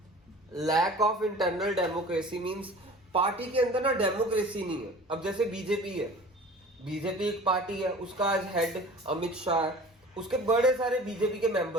Lack of internal democracy means party के अंदर ना डेमोक्रेसी नहीं है। अब जैसे बीजेपी है, बीजेपी एक पार्टी है, उसका आज हेड अमित शाह है, उसके बड़े सारे बीजेपी के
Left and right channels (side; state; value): both; normal; correlation 0.43